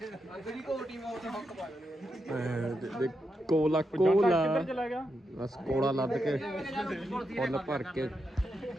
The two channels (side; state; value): both; normal; correlation 0.85